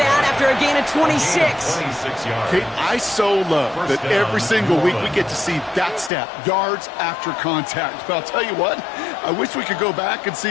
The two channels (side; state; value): right; drops out; at 6.1 s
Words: after a gain of 26. Kate, I so love that every single week we get to see that stat, yards after contact. But I'll tell you what, I wish we could go back and